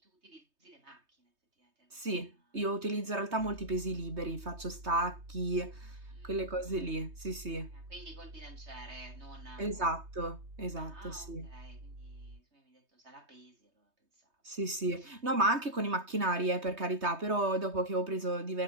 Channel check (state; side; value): late; left; 3.2 ms